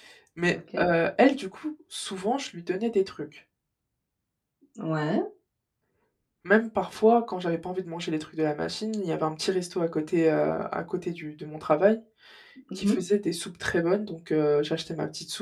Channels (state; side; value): identical; both; correlation 1.00